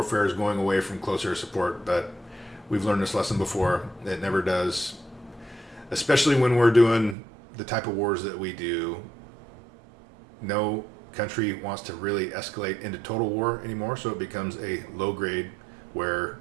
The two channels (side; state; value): left; drops out; at 7.2 s